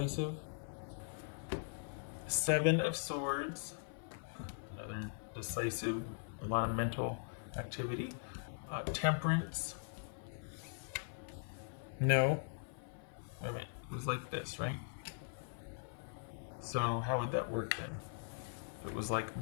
Seven of Swords. Another decisive, a lot of mental activity. Temperance. No. Wait a minute. It was like this, right? So how would that work then? If it was like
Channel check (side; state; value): right; silent; 51 dB below the other